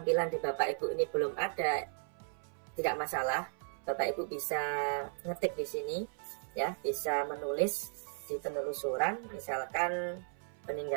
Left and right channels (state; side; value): silent; left; 54 dB below the other